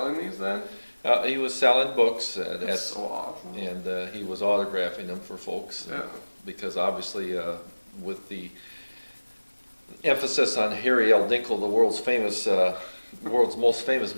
these then? He was selling books. That's so awesome. And he was autographing them for folks. Yeah. Because obviously, with the emphasis on Harry L. Dinkle, the world's most famous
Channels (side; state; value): both; inverted; correlation -1.00